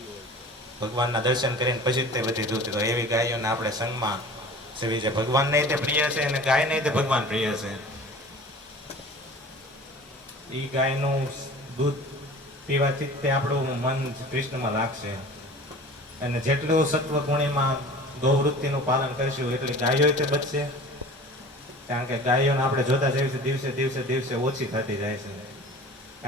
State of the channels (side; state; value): both; normal; correlation 0.41